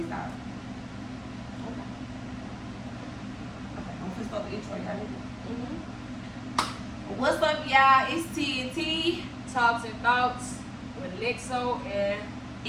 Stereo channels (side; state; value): both; identical; correlation 1.00